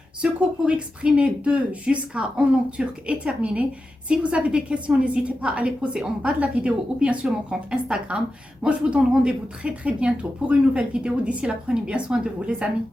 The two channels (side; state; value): both; normal; correlation 0.91